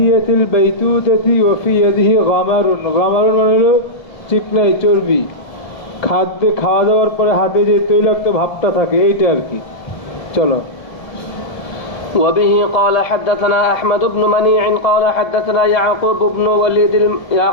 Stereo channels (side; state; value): right; late; 1.8 ms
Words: বাইতুতাতি ওয়া ফি ইয়াদিহি গামারুন। গামারুন মানে হলো চিকনাই, চর্বি। খাদ্যে খাওয়া দাওয়ার পরে হাতে যে তৈলাক্ত ভাবটা থাকে, এইটা আর কি। চলো। وبه قال حدثنا أحمد بن منيع قال حدثنا يعقوب